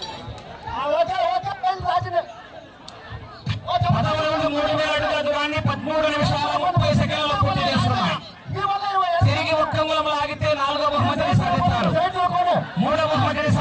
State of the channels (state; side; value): identical; both; correlation 1.00